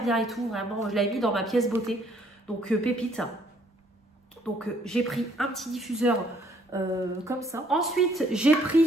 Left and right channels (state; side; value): normal; both; correlation 0.64